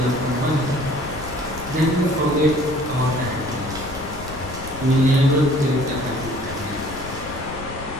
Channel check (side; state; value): left; noise; rumble, 12 dB below the sound